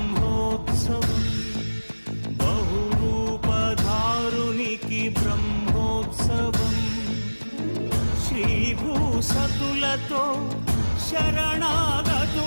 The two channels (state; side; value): inverted; both; correlation -1.00